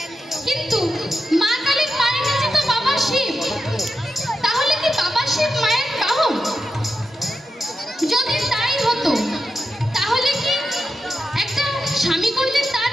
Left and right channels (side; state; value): both; normal; correlation 0.88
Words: কিন্তু মা কালীর পায়ের নিচে তো বাবা শিব, তাহলে কি বাবা শিব মায়ের বাহন? যদি তাই হতো তাহলে কি একটা স্বামী করলে তার